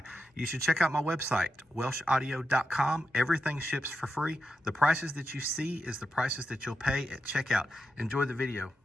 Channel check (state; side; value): normal; both; correlation 0.88